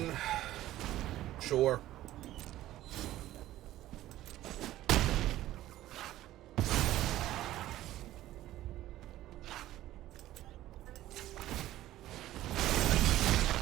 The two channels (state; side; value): quieter; left; 14.6 dB